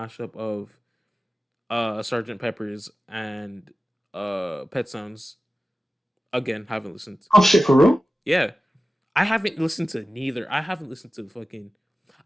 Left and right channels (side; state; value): both; normal; correlation 0.94